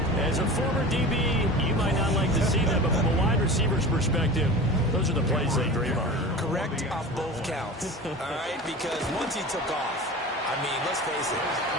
As a former DB, you might not like to see them, but from a wide receiver's perspective, those are the plays they dream of. Correct off both counts, all right? Because once he took off, I mean, let's face it,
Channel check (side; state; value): both; normal; correlation 0.34